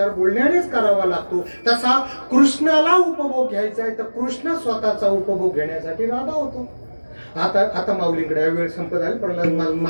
बोलण्यानेच करावा लागतो. तसा कृष्णाला उपभोग घ्यायचा आहे तर कृष्ण स्वतःचा उपभोग घेण्यासाठी राधा होतो. आता माऊलींकडे आहे, वेळ संपत आली पण मला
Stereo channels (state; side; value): inverted; both; correlation -1.00